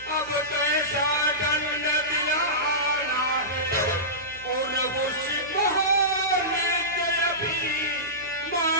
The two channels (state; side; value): noise; right; hum, 22 dB below the sound